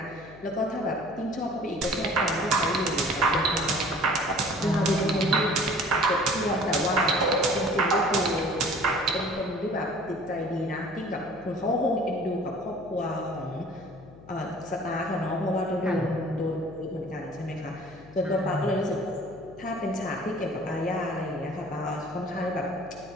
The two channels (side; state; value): left; noise; hum, 20 dB below the sound